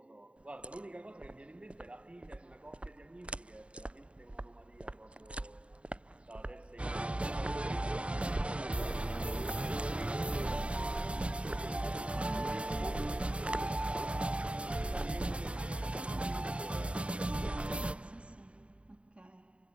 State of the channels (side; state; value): left; late; 0.060 ms